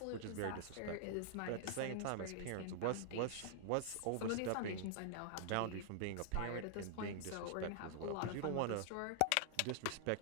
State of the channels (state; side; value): different; both; correlation -0.01